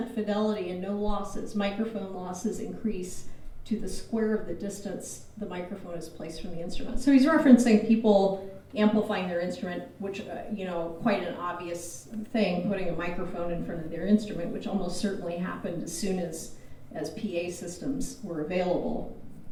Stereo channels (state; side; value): identical; both; correlation 1.00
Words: fidelity and no losses. Microphone losses increase to the square of the distance the microphone is placed from the instrument. So he's referencing people amplifying their instrument, which, quite an obvious thing, putting a microphone in front of their instrument, which almost certainly happened as soon as PA systems were available.